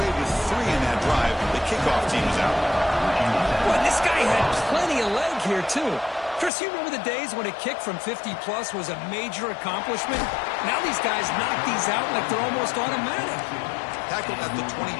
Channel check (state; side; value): drops out; right; at 6.5 s